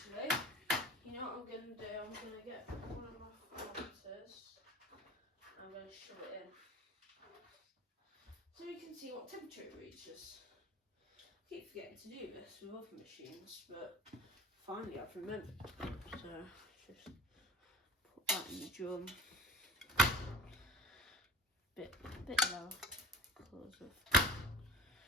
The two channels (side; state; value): both; normal; correlation 0.40